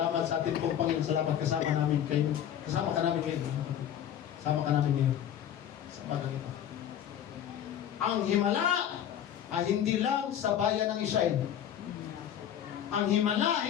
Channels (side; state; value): right; quieter; 10.0 dB